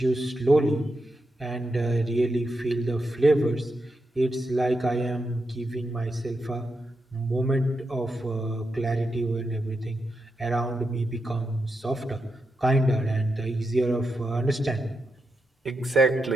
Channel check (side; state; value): both; normal; correlation 0.86